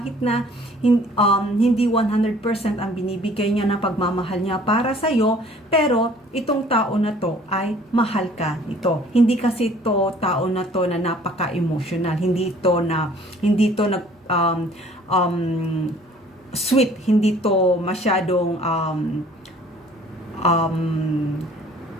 na hindi 100% ang binibigay niya na pagmamahal niya para sa'yo, pero itong tao na to ay mahal ka ito. Hindi kasi ito tao na to na napaka-emotional. Hindi to sweet. Hindi to masyadong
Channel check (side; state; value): both; normal; correlation 0.54